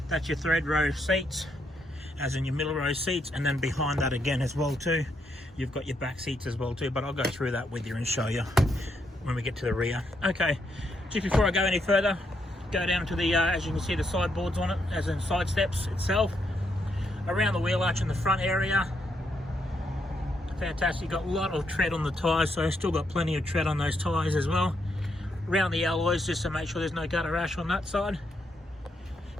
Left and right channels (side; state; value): both; normal; correlation 0.78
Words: That's your third row seats, as in your middle row seats, and then behind that again as well too, you've got your back seats as well too, but I'll go through that with you and show you when we get to the rear. Okay, just before I go any further, go down to the as you can see the sideboards on it, as in side steps itself. Around the wheel arch in the front area, fantastic. You've got a lot of tread on the tyres, so still got plenty of tread on those tyres as well. Around the alloys, just to make sure there's no gutter rash on that side.